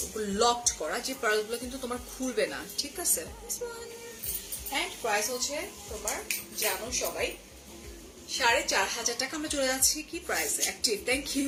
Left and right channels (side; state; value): both; identical; correlation 1.00